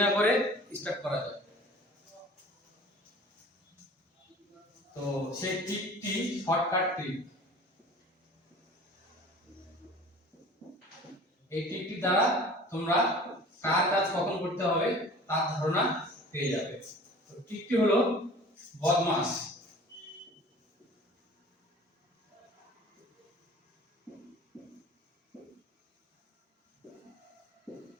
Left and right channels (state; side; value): normal; both; correlation 0.44